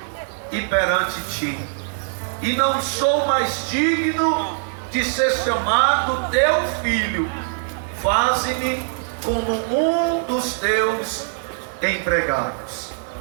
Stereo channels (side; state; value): left; silent; digital silence